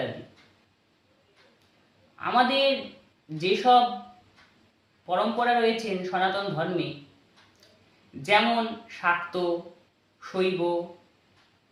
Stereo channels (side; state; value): both; identical; correlation 1.00